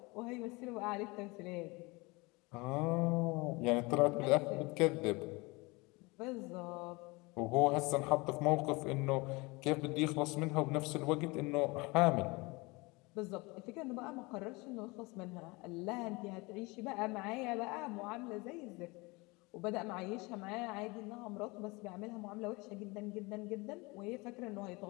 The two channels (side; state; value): right; quieter; 25.2 dB